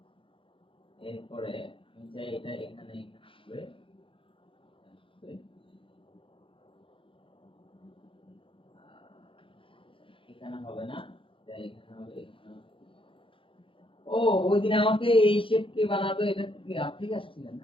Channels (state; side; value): late; right; 0.25 ms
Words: এরপরে আমি চাই এটা এখানে হবে, এখানে হবে না, তাই এখানে হবে, এখানে হবে। ও, ওই দিন আমাকে এই শেপ কে বানাবে, এটা কি আপনি আসছিলেন